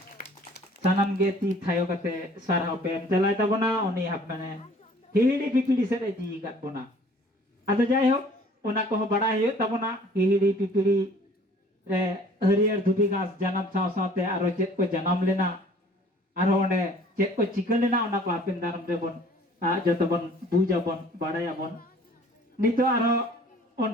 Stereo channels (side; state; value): both; normal; correlation 0.52